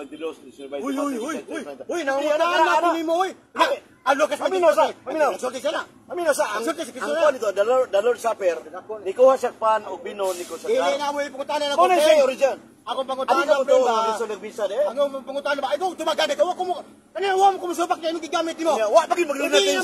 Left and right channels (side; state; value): both; identical; correlation 1.00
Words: 19, Uy, nangungutaan na mo, uy. Ang Lucas, Paminaw sa, paminaw. Nagsulti siya na. Amino sa ang Nagsulti si Kristo ang na. kuha nito, the Lord Supper, ni kuha siya pan o bino ni ko sa Dili na mo ipungutan na Kung ako. siya original. Akong Ano pangutan ka na mo to, ba? ang nagbisa de? Akong pangutan na ba? Ikaw, tumagana ka. Wako mo. Kanina, wa mo kumusupak na yung gigamit mo. Wa pagin maglinatin Dili na